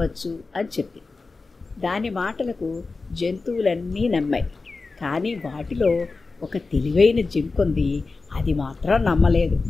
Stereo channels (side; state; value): right; quieter; 3.9 dB